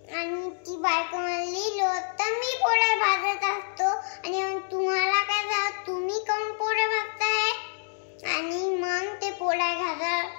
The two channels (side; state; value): right; silent; digital silence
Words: आणि ती बायको म्हणली तर मी पोळ्या भाजत असतो आणि मग तुम्हाला काय झालं, तुम्ही कोण पोळ्या भाजताय. आणि मग ते पोळ्या